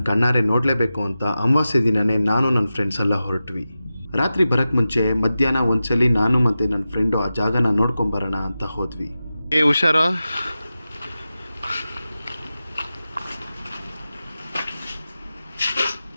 ಕಣ್ಣಾರೆ ನೋಡಲೇಬೇಕು ಅಂತ ಅಮಾವಾಸ್ಯೆ ದಿನವೇ ನಾನು ನನ್ನ ಫ್ರೆಂಡ್ಸ್ ಎಲ್ಲ ಹೊರಟ್ವಿ. ರಾತ್ರಿ ಬರೋಕ್ಕೆ ಮುಂಚೆ ಮಧ್ಯಾಹ್ನ ಒಂದ್ಸಲಿ ನಾನು ಮತ್ತು ನನ್ನ ಫ್ರೆಂಡು ಆ ಜಾಗನ ನೋಡ್ಕೊಂಬರೋಣ ಅಂತ ಹೋದ್ವಿ. ಹುಷಾರು.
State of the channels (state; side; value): inverted; both; correlation -0.93